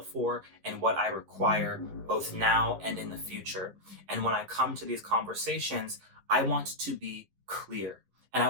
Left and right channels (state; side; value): late; left; 12 ms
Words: and what I require both now and in the future. And when I come to these conversations, I want to be clear and I